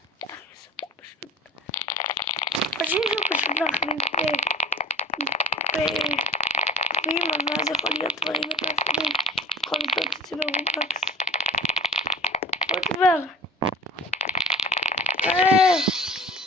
חושבים שהוא פשוט להחליף בגביעים, אבל אז יכול להיות דברים יותר חשובים. יכול לבדוק את זה ברובלוקס. עוד דבר.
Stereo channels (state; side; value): normal; both; correlation 0.43